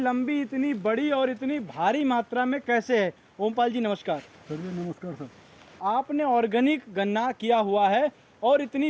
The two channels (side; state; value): both; identical; correlation 1.00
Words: इतनी बड़ी और इतनी भारी मात्रा में कैसे है। ओमपाल जी नमस्कार। सर जी नमस्कार सर। आपने ऑर्गेनिक गन्ना किया हुआ है और